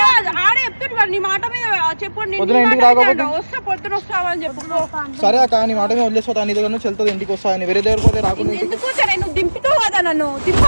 ఆడే చెప్తున్నాడు. నీ మాట మీద చెప్పండి. పొద్దున ఇంటికి రాకపోతే వస్తా పొద్దున వస్తావని చెప్పు. సరే అక్క నీ మాట మీద వదిలేసిపోతా. నీ దగ్గర నుంచి వెళ్తుంది ఇంటికి వస్తా. వేరే దగ్గర పోతే రాకుండా ఎందుకు నువ్వు దింపుతావు కదా నన్ను.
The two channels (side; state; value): both; inverted; correlation -1.00